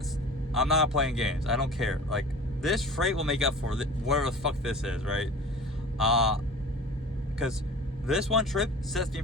I'm not playing games. I don't care. Like, this freight will make up for whatever the fuck this is, right? Because this one trip sets me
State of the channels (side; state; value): both; normal; correlation 0.39